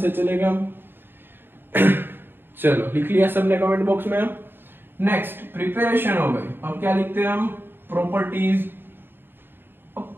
चलेगा। चलो लिख लिया सबने कमेंट बॉक्स में। नेक्स्ट प्रिपरेशन हो गई, अब क्या लिखते हैं हम, प्रॉपर्टीज। अब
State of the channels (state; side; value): late; left; 0.099 ms